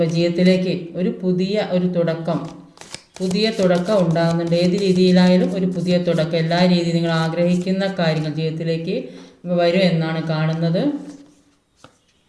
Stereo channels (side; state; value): both; identical; correlation 1.00